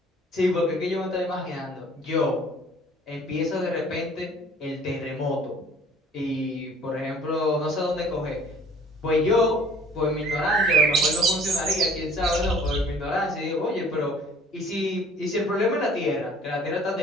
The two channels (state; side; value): normal; both; correlation 0.53